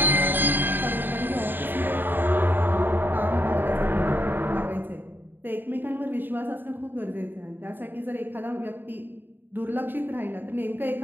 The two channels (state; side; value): late; left; 0.094 ms